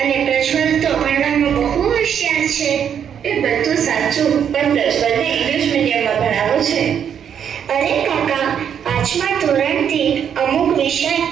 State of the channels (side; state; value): left; quieter; 8.4 dB